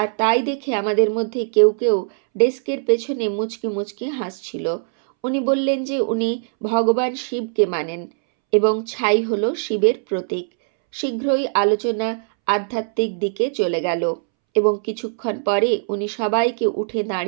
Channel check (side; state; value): left; silent; 65 dB below the other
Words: তাই দেখে আমাদের মধ্যে কেউ কেউ ডেস্কের পেছনে মুচকি মুচকি হাসছিল। উনি বললেন যে উনি ভগবান শিবকে মানেন এবং ছাই হল শিবের প্রতীক। শীঘ্রই আলোচনা আধ্যাত্মিক দিকে চলে গেল এবং কিছুক্ষণ পরে উনি সবাইকে উঠে